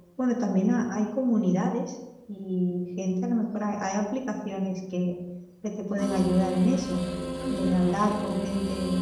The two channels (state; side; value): identical; both; correlation 1.00